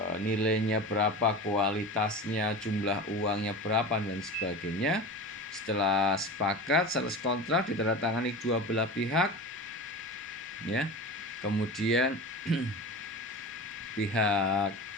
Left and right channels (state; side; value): normal; both; correlation 0.31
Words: nilainya berapa, kualitasnya, jumlah uangnya berapa dan sebagainya. Setelah sepakat, sales contract ditandatangani dua belah pihak ya. Kemudian pihak